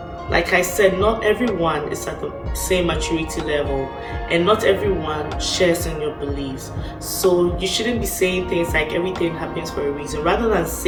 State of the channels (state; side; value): identical; both; correlation 1.00